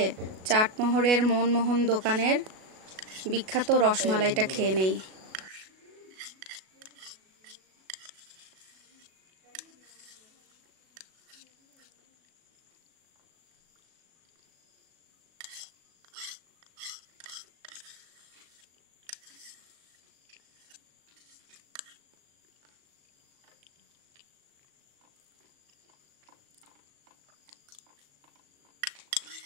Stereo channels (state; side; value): late; left; 37 ms